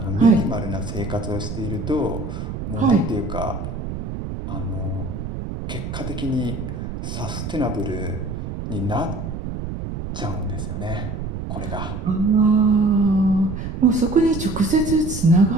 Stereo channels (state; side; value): noise; right; rumble, 6 dB below the sound